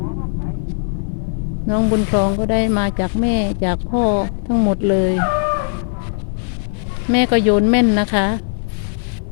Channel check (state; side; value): silent; right; digital silence